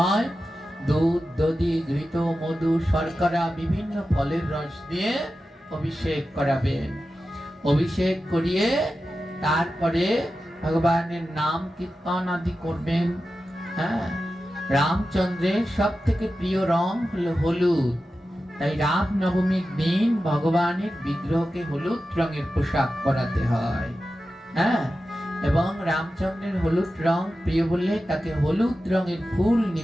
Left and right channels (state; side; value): normal; both; correlation 0.93